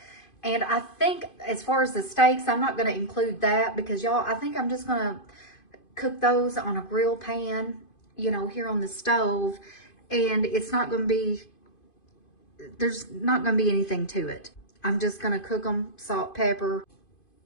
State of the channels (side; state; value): right; late; 2.5 ms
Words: And I think as far as the steaks, I'm not going to include that because y'all, I think I'm just going to cook those on a grill pan, you know, here on the stove. And it's not going to be, there's not going to be anything to it. I'm just going to cook them, salt, pepper,